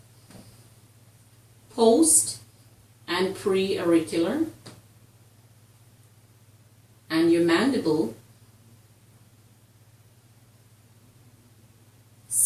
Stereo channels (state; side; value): identical; both; correlation 1.00